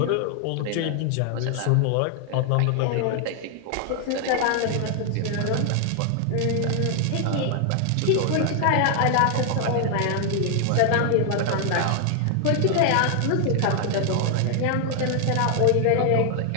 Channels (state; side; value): different; both; correlation 0.00